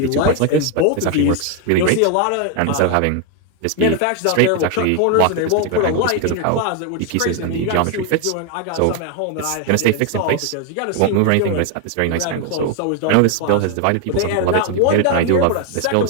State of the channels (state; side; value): different; both; correlation 0.01